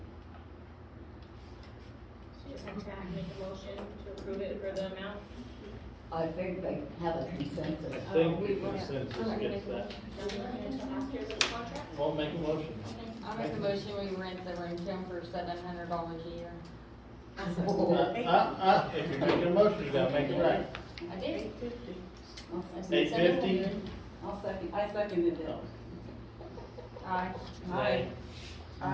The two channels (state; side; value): identical; both; correlation 1.00